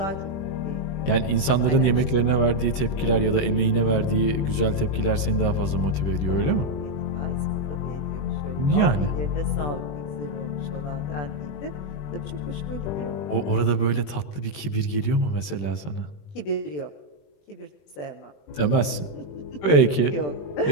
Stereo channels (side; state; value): right; late; 20 ms